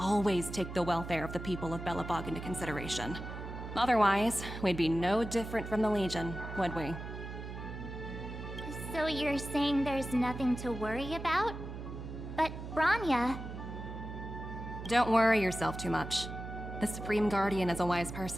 take the welfare of the people of Belobog into consideration. Otherwise, we'd be no different from the Legion, would we? So you're saying there's nothing to worry about? But Branya... Don't worry yourself too much. The Supreme Guardian is a wise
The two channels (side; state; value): right; noise; hum, 9 dB below the sound